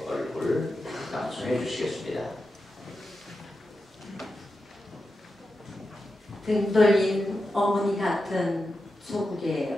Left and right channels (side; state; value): both; normal; correlation 0.90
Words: 얼굴 낭송해 주시겠습니다. 등 돌린 어머니 같은